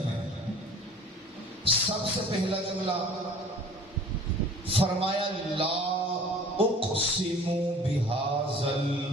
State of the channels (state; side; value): normal; both; correlation 0.47